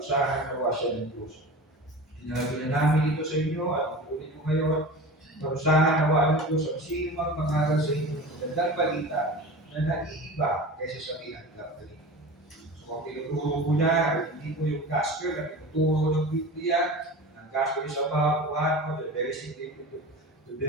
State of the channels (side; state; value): both; normal; correlation 0.33